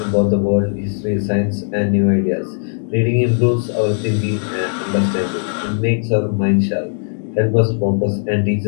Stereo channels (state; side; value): silent; right; digital silence